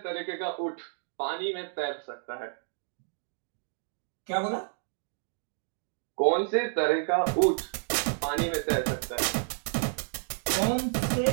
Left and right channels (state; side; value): silent; left; digital silence